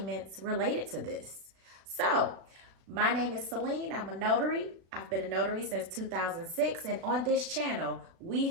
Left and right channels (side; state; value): left; late; 37 ms